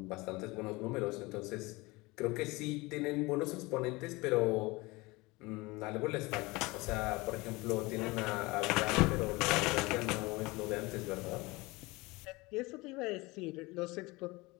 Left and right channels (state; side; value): quieter; right; 23.2 dB